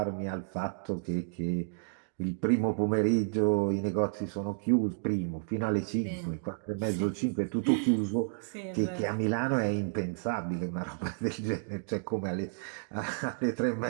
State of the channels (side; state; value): left; silent; digital silence